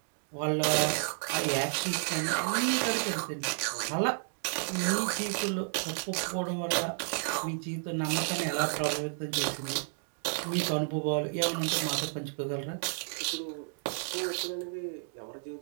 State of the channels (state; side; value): silent; left; 57 dB below the other